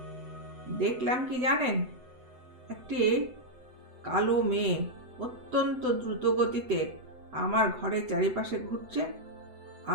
দেখলাম কি জানেন, একটি কালো মেয়ে অত্যন্ত দ্রুত গতিতে আমার ঘরের চারিপাশে ঘুরছে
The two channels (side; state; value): left; late; 7.9 ms